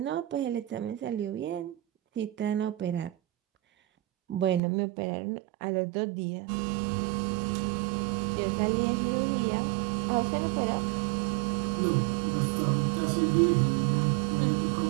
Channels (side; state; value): left; drops out; at 4.6 s